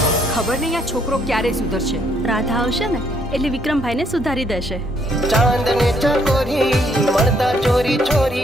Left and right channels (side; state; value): both; normal; correlation 0.69